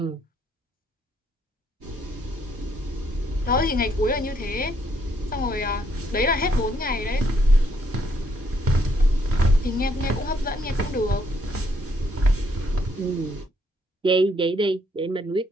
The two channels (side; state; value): both; normal; correlation 0.71